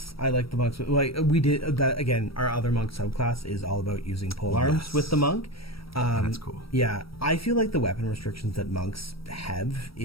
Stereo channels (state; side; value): late; right; 0.75 ms